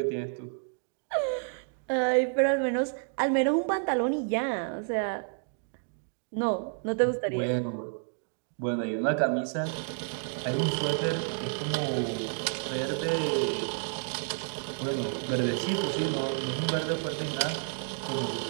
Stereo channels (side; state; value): left; silent; digital silence